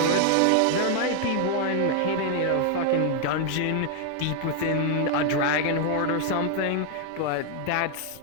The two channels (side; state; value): both; different; correlation 0.00